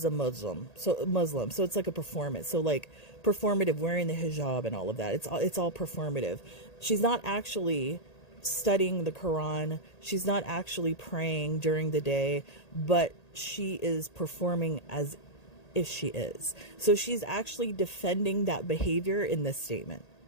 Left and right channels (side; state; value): right; late; 1.8 ms